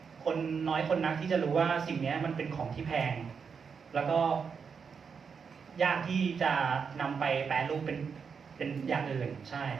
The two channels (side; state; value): left; quieter; 6.1 dB